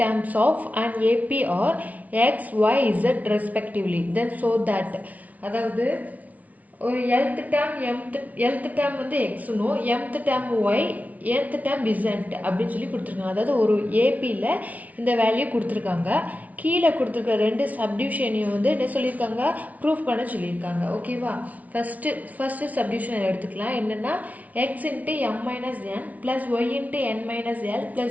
terms of an AP are x, y, z respectively then so that அதாவது ஒரு nth term nth term வந்து x னும் mth term y nth term z அப்படின்னு சொல்லி கொடுத்துருக்காங்க. அதாவது ஒரு ஏபியில் இந்த வேல்யூ கொடுத்துருக்காங்க. கீழே கொடுத்துருக்க ரெண்டு சப்டிவிஷனையும் வந்து என்ன சொல்லியிருக்காங்க, ப்ரூஃப் பண்ண சொல்லியிருக்காங்க. ஓகேவா, ஃபர்ஸ்ட் சப்டிவிஷன் எடுத்துக்கலாம். என்னென்னா x into m minus n plus y into n minus l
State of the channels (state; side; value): late; left; 0.071 ms